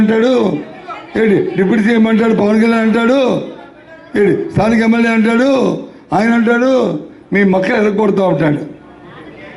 అంటాడు, ఏంటి డిప్యూటీ సీఎం అంటాడు, పవన్ కళ్యాణ్ అంటాడు, ఏంటి స్థానిక ఎమ్మెల్యే అంటాడు, ఆయన అంటాడు మీ మక్కలు ఎరగొడుతూ ఉంటాడు.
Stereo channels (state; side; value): identical; both; correlation 1.00